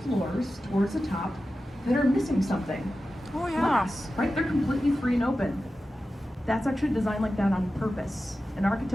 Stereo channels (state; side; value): normal; both; correlation 0.93